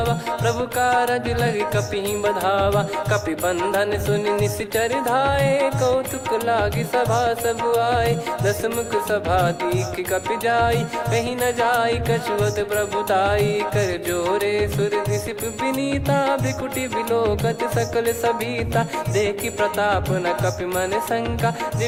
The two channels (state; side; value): identical; both; correlation 1.00